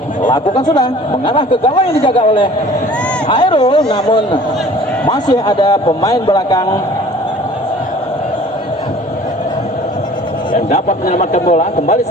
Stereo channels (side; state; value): both; normal; correlation 0.48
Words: Lakukan sudah, mengarah ke gawang yang dijaga oleh Hairul, namun masih ada pemain belakang yang dapat menyelamatkan bola. Kembali